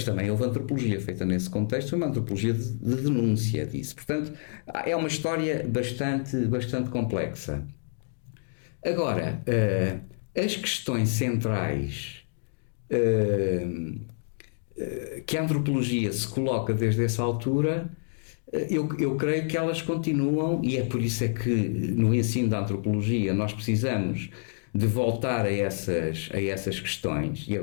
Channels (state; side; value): silent; right; digital silence